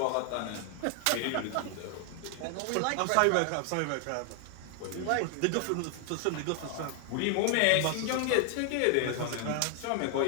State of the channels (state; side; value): different; both; correlation 0.00